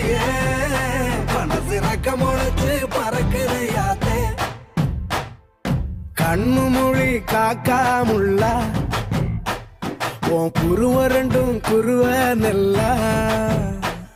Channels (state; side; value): identical; both; correlation 1.00